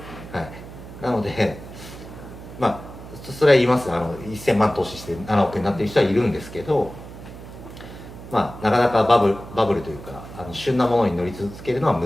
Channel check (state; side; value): noise; right; hum, 14 dB below the sound